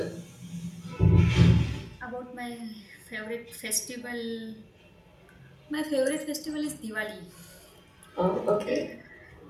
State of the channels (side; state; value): both; identical; correlation 1.00